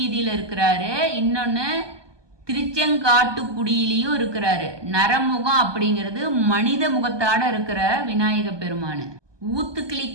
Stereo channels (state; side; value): late; left; 1.2 ms